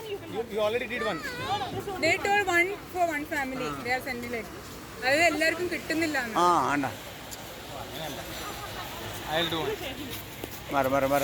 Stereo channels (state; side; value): identical; both; correlation 1.00